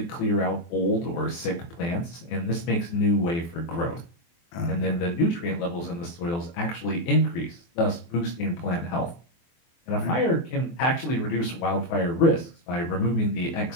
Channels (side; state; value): right; late; 23 ms